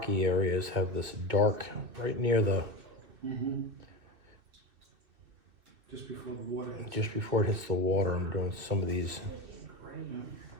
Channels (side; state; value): left; late; 2.6 ms